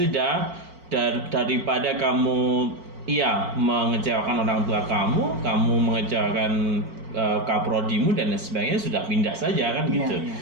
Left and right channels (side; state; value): left; late; 4.5 ms